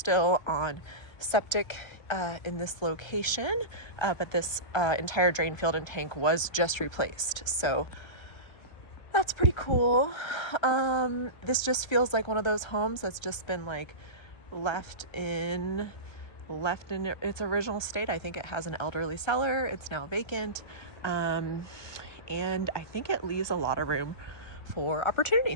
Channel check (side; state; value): right; late; 1.3 ms